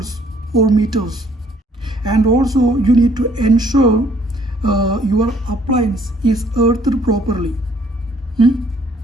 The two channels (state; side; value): normal; both; correlation 0.63